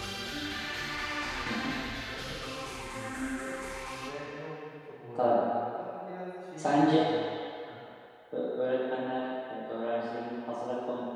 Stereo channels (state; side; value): identical; both; correlation 1.00